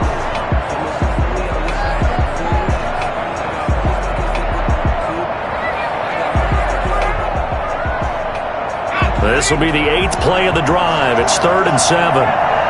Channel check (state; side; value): identical; both; correlation 1.00